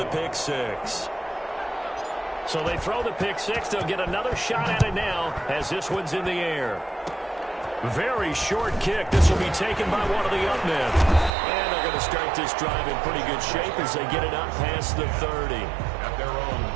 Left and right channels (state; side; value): drops out; left; at 11.3 s